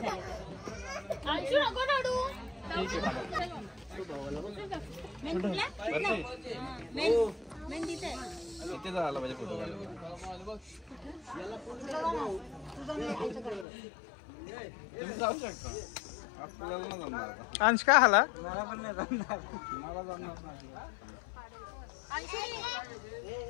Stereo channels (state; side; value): drops out; right; at 13.7 s